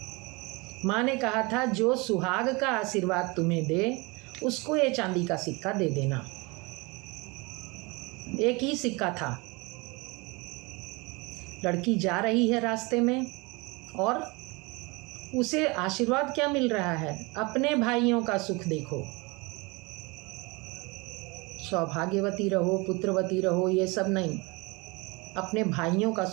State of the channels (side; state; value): left; quieter; 26.6 dB